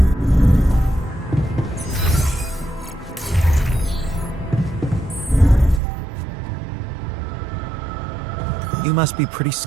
You must be pretty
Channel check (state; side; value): drops out; left; at 5.8 s